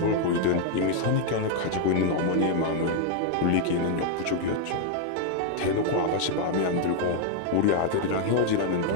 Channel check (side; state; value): both; different; correlation 0.00